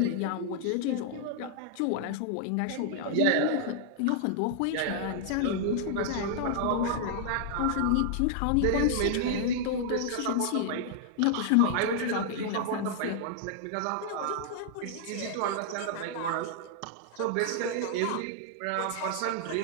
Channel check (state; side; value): different; both; correlation -0.01